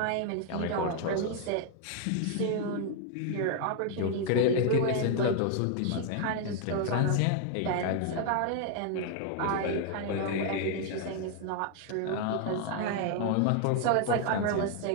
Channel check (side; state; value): both; different; correlation 0.00